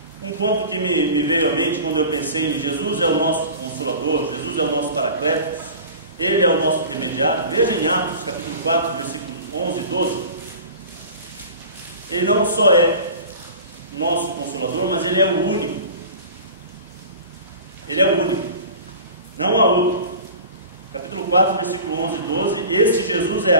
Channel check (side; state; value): both; inverted; correlation -0.38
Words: um ponto que me veio à mente quando eu pensei em Jesus é o nosso Consolador, Jesus é o nosso Paracletos, Ele é o nosso intermediário. Veja em Atos capítulo 4, versículos 11 e 12. Ele não só é nosso Consolador, mas Ele é o único. Ele é o único, não há outro. Capítulo 4, versículo 11 e 12. Este Jesus é